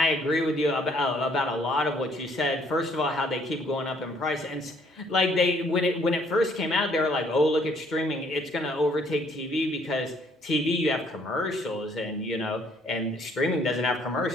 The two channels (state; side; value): normal; both; correlation 0.64